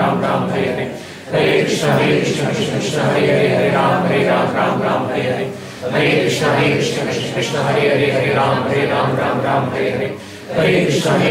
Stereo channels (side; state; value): both; identical; correlation 1.00